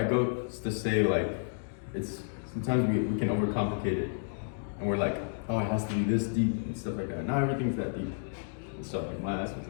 go to say, like, it's, sometimes we can overcomplicate it. And we're like, oh, it has to be this deep and stuff like that. Not everything's that deep. And so like my ass was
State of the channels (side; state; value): right; silent; digital silence